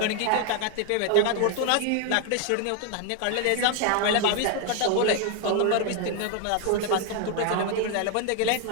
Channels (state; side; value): different; both; correlation 0.01